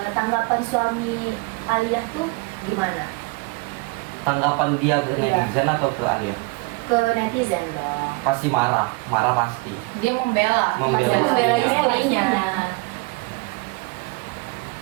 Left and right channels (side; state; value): left; quieter; 27.6 dB